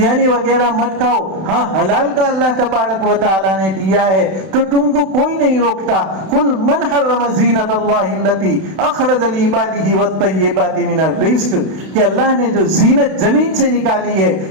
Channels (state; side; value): late; left; 32 ms